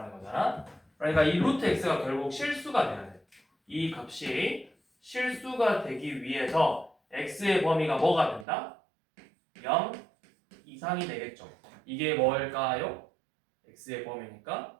거잖아. 그러니까 이 루트 x가 결국 실수가 돼야 돼. 이 값이 실수가 되기 위해서 x의 범위가 뭐가 된다? 0 이상이 되겠죠. 이게 뭘까요? x의 범위니까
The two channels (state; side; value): drops out; left; at 8.5 s